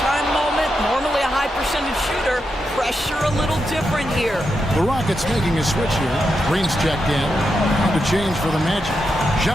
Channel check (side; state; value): both; normal; correlation 0.86